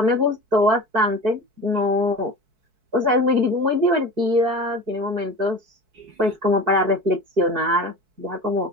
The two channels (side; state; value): left; late; 4.6 ms